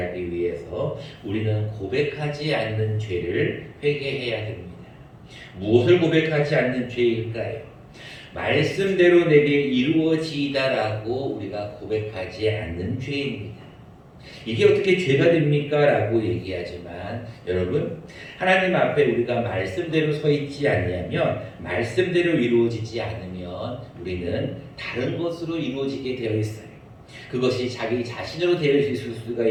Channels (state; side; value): identical; both; correlation 1.00